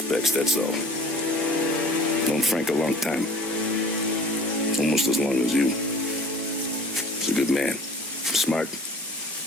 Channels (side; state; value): both; normal; correlation 0.46